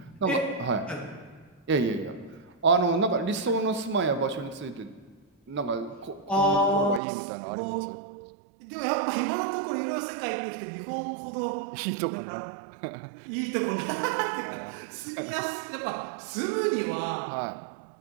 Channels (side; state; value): left; drops out; at 7.0 s